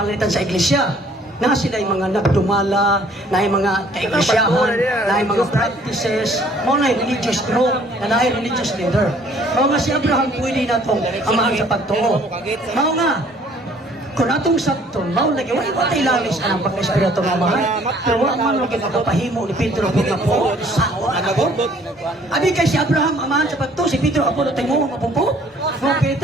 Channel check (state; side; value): normal; both; correlation 0.58